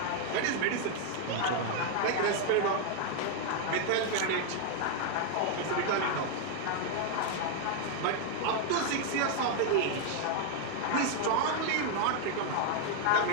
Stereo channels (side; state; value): both; different; correlation 0.00